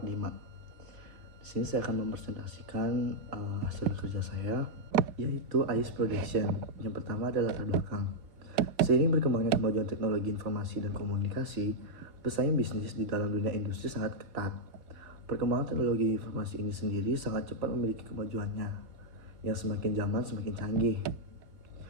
Di sini saya akan mempresentasikan hasil kerja saya, yaitu AIS Production. Yang pertama adalah latar belakang. Seiring berkembangnya kemajuan teknologi informasi dan komunikasi, pesaing bisnis di dalam dunia industri sangat ketat. Perkembangan teknologi informasi ini sendiri sangat cepat memiliki kemajuannya, yang semakin zaman semakin canggih.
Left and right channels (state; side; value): late; left; 4.1 ms